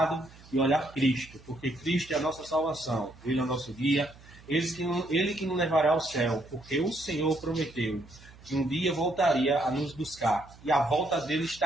e olhar Cristo. Porque Cristo é a nossa salvação. Ele é o nosso guia. Ele que nos levará ao céu. Porque o Senhor prometeu que um dia voltaria a nos buscar. E a volta dele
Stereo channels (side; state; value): right; noise; hum, 22 dB below the sound